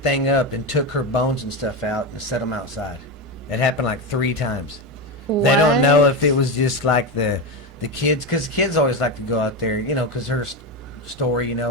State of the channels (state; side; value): normal; both; correlation 0.15